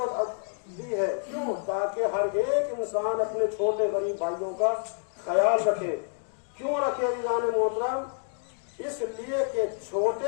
دی ہے. کیوں؟ تاکہ ہر ایک انسان اپنے چھوٹے غریب بھائیوں کا خیال رکھے. کیوں رکھے جان محترم؟ اس لیے کہ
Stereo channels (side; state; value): right; silent; digital silence